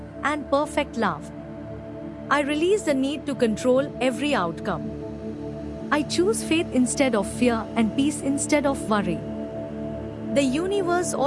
and perfect love. I release the need to control every outcome. I choose faith instead of fear and peace instead of worry. The universe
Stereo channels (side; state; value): both; identical; correlation 1.00